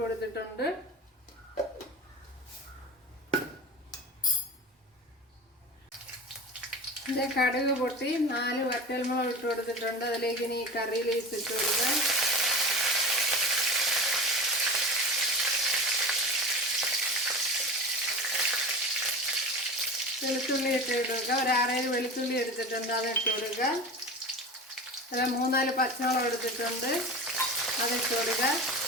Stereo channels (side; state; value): both; normal; correlation 0.31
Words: കൊടുത്തിട്ടുണ്ട്. ഇത് കടുക് പൊട്ടി 4 വറ്റൽമുളക് ഇട്ട് കൊടുത്തിട്ടുണ്ട്. അതിലേക്ക് ഇനി കറി ലീവ്സ് ഇട്ട് കൊടുക്കുക. വെളുത്തുള്ളി ഇട്ട് കൊടുക്കുക. ഒരു 6-7 വെളുത്തുള്ളി എടുത്തിട്ടുണ്ട്, അത് ഇട്ട് കൊടുക്കുക. അല്ല 3-4 പച്ചമുളക് എടുത്തിട്ടുണ്ട്, അതിട്ട് കൊടുക്കുക.